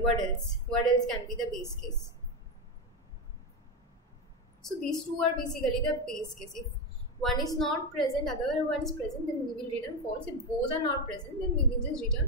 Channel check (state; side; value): normal; both; correlation 0.12